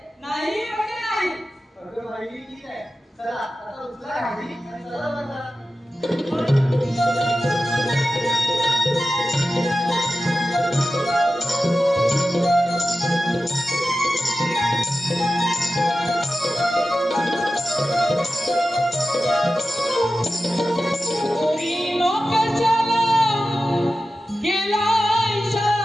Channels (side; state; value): both; normal; correlation 0.93